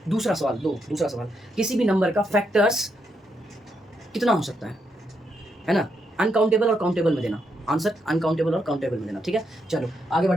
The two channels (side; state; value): both; normal; correlation 0.80